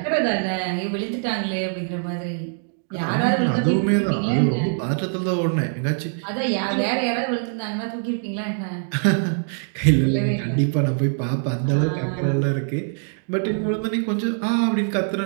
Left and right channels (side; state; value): left; silent; 63 dB below the other